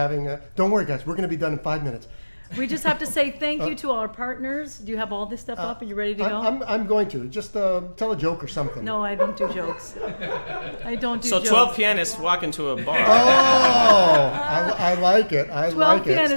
don't worry guys, we're going to be done in 5 minutes. We just have to say thank you to our partners. Do you have all this stuff up? Are you ready to go? I'm going to. Just tell a joke or something. No, I don't do jokes. I don't do so jokes. 12 pianists walk into a bar. Oh, I like it. 12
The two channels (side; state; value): both; inverted; correlation -1.00